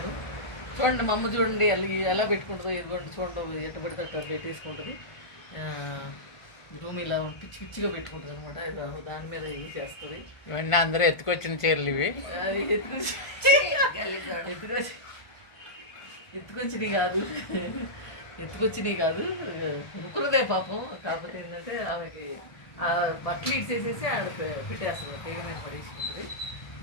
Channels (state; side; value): late; right; 1.4 ms